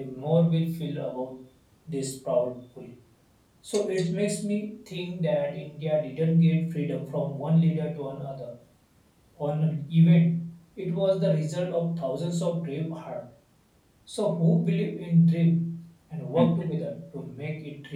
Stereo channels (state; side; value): identical; both; correlation 1.00